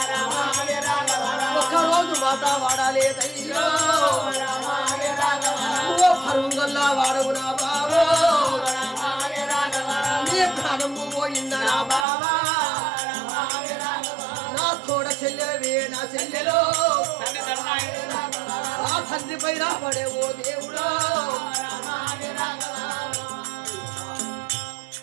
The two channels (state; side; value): drops out; left; at 12.1 s